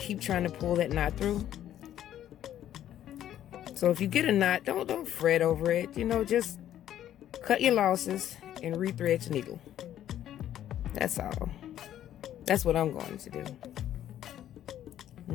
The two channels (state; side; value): quieter; right; 11.5 dB